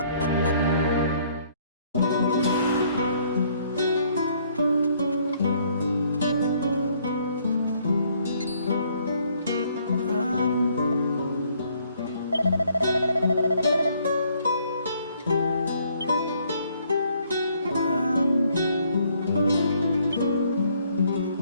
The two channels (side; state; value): both; inverted; correlation -0.65